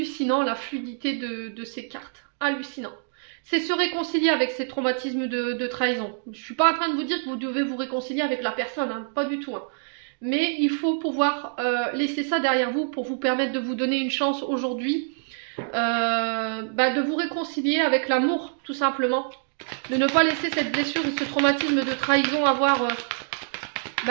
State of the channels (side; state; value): left; silent; digital silence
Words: la fluidité de ces cartes. Hallucinant. C'est se réconcilier avec ces traumatismes de trahison. Je ne suis pas en train de vous dire que vous devez vous réconcilier avec la personne, hein, pas du tout. Hein. Mais il faut pouvoir laisser ça derrière vous pour vous permettre de vous donner une chance aujourd'hui de vous réconcilier avec l'amour, tout simplement. De ne pas laisser cette blessure ou ce traumatisme de trahison avoir